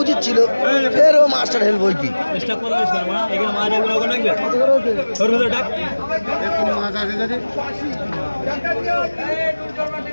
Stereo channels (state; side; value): inverted; both; correlation -1.00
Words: উচিত ছিল, ফের ও মাস্টার হেল্প হইতি।